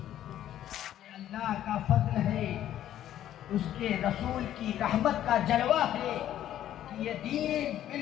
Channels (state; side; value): quieter; right; 11.8 dB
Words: اللہ کا فضل ہے، اس کے رسول کی رحمت کا جلوہ ہے کہ یہ دین